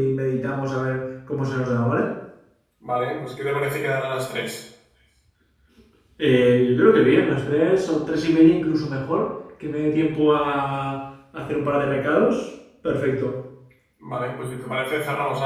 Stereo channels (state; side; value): identical; both; correlation 1.00